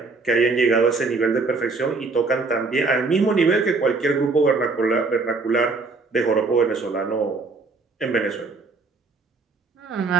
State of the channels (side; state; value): left; quieter; 4.0 dB